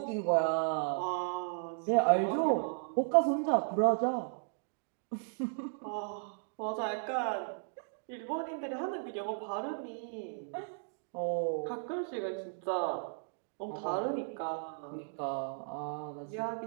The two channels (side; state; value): left; silent; digital silence